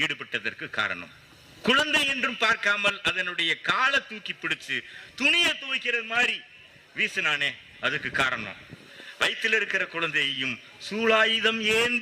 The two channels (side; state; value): both; identical; correlation 1.00